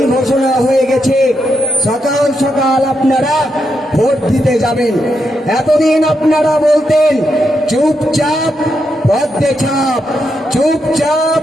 ঘোষণা হয়ে গেছে, সকাল সকাল আপনারা ভোট দিতে যাবেন। এতদিন আপনারা বলতেন চুপচাপ পদ্মে ছাপ, চুপচাপ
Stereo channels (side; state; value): both; normal; correlation 0.82